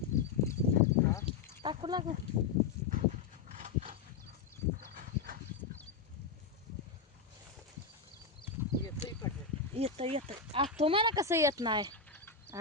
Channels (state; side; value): quieter; right; 5.2 dB